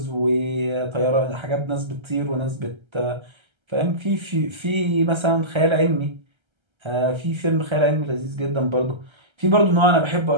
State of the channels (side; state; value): left; late; 1.3 ms